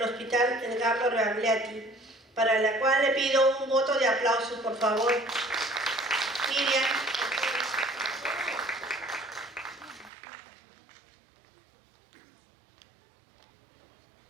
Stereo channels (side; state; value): left; drops out; at 10.1 s